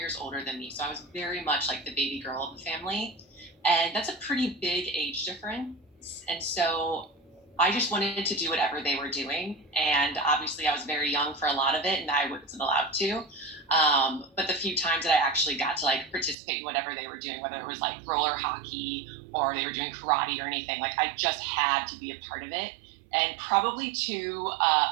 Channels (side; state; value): left; drops out; at 16.4 s